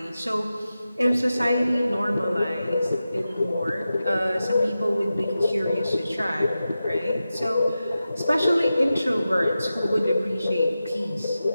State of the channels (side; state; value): both; inverted; correlation -0.93